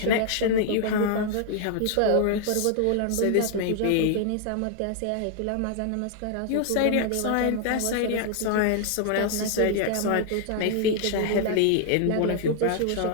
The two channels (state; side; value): different; both; correlation 0.00